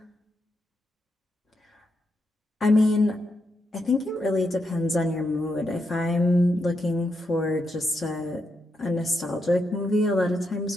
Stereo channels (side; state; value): both; normal; correlation 0.82